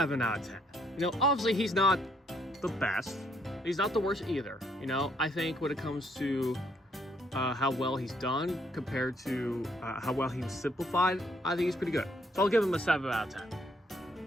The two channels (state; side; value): normal; both; correlation 0.70